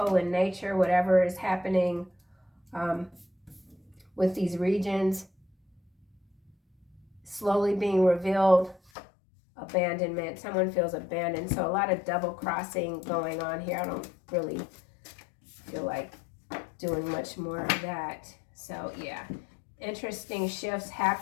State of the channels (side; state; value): right; drops out; at 8.9 s